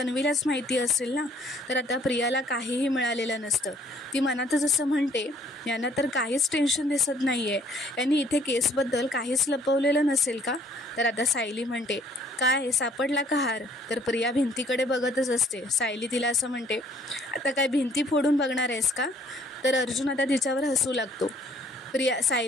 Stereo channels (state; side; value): normal; both; correlation 0.61